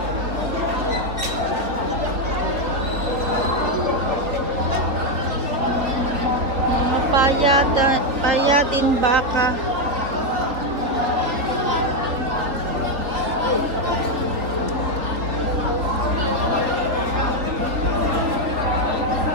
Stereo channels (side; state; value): left; late; 4.0 ms